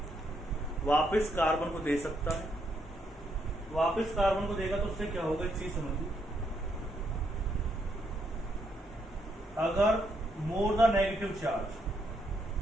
वापस कार्बन को दे सकता है। वापस कार्बन को देगा तो उससे क्या होगा, एक चीज समझिए, अगर more the negative charge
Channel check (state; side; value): normal; both; correlation 0.76